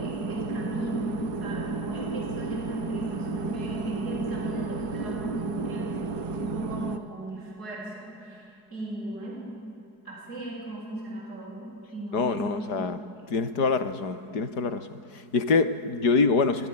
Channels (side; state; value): right; late; 4.8 ms